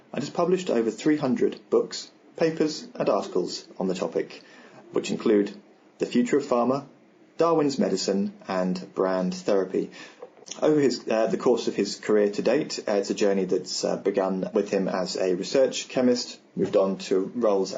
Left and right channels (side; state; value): both; identical; correlation 1.00